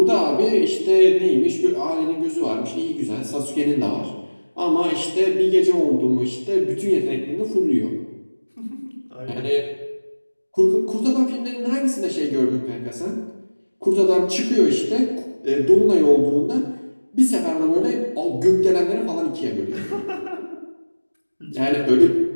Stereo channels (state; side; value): inverted; both; correlation -1.00